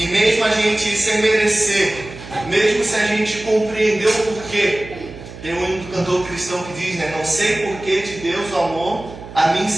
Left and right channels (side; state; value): right; noise; hum, 14 dB below the sound